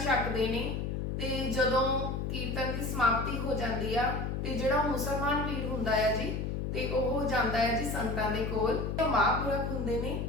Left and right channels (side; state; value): left; noise; hum, 2 dB below the sound